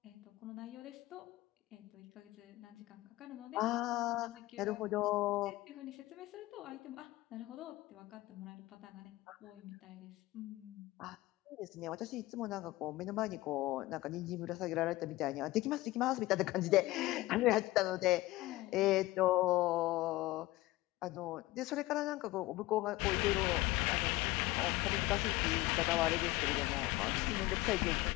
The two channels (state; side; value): quieter; right; 18.5 dB